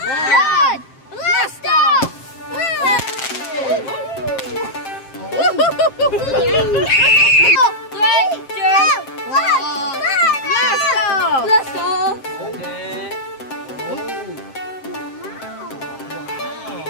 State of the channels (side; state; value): right; late; 7.6 ms